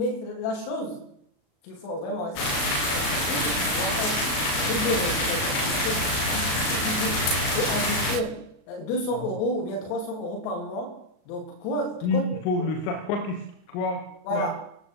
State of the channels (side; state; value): right; late; 36 ms